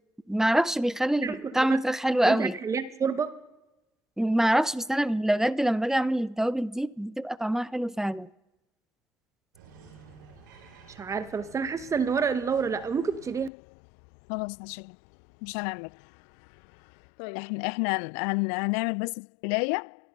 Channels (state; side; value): drops out; right; at 13.5 s